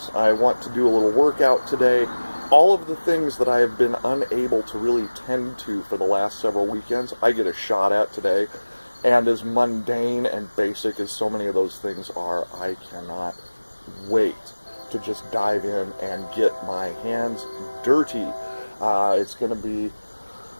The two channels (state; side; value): inverted; both; correlation -1.00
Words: I want to do a little workout today. All of the things that I have been unable to really tend to for the last several weekends, I get a shot at today. And as mundane and basic as so many of those things are, I cannot wait to just dive in and get my hands dirty. It's gonna